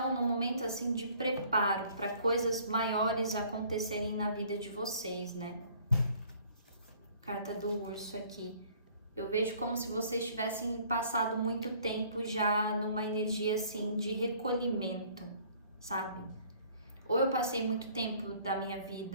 num momento assim de preparo para coisas maiores acontecerem na vida de vocês, né? Carta do urso aqui. Eu vejo como se vocês tivessem passado muito tempo já numa energia assim de recolhimento, sabe? Ou eu passei muito tempo da minha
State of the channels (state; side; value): inverted; both; correlation -0.56